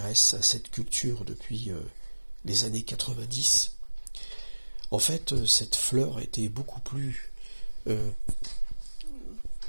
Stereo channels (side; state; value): both; inverted; correlation -1.00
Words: à cette culture depuis les années 90. En fait, cette fleur était beaucoup plus